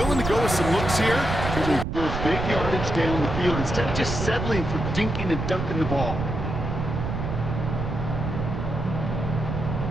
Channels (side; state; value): right; noise; rumble, 4 dB below the sound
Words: to go with some looks here. They're going to go big yardage down the field instead of just settling for dinking and dunking the ball.